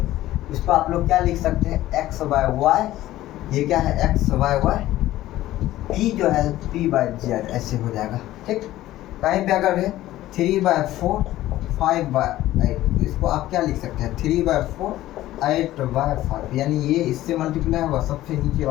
इसको आप लोग क्या लिख सकते हैं, x/y, ये क्या है x/y, p जो है p/z, ऐसे हो जाएगा। ठीक, कहीं पे अगर है 3/4 5/8, तो इसको आप क्या लिख सकते हैं 3/4 8/5, यानी ये इससे मल्टीप्लाई होगा, सबसे नीचे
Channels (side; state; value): right; quieter; 15.0 dB